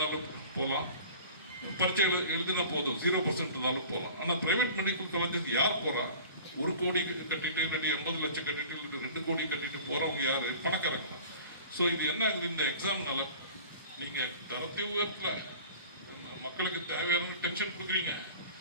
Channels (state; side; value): inverted; both; correlation -0.42